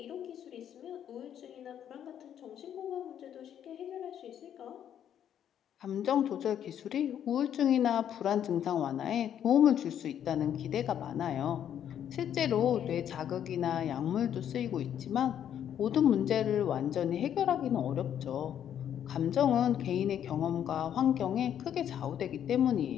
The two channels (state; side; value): quieter; right; 9.7 dB